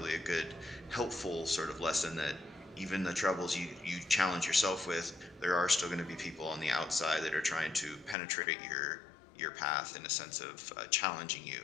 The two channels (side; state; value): right; drops out; at 8.2 s